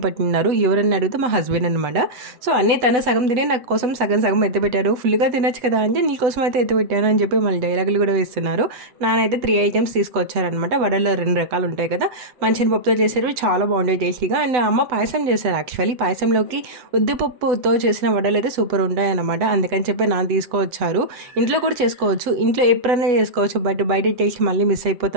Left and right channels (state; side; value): late; left; 8.0 ms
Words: పెట్టినారు. ఎవరన్నా అడిగితే మా హస్బెండ్ అనమాట. సో అన్నీ తన సగం తిని నాకు కోసం సగం సగం ఎత్తిపెట్టారు. ఫుల్గా తినచ్చు కదా అంటే నీకోసం అయితే ఎత్తిపెట్టాను అని చెప్పి మళ్ళీ డైలాగులు కూడా వేస్తున్నారు. నానైతే 3 ఐటమ్స్ తీసుకొచ్చారనమాట. వడల్లో 2 రకాలు ఉంటాయి కదా, మంచిని పప్పుతో చేసేవి చాలా బాగుంటాయి టేస్టీగా. అండ్ అమ్మ పాయసం చేశారు. యాక్చువల్లీ పాయసంలోకి ఉద్దిపప్పుతో చేసిన వడలు అయితే సూపర్ ఉంటాయి అనమాట. అందుకని చెప్పి నాన్న తీసుకొచ్చారు. ఇంట్లో కూడా చేసుకోవచ్చు, ఇంట్లో ఎప్పుడైనా చేసుకోవచ్చు, బట్ బయట టేస్ట్ మళ్ళీ మిస్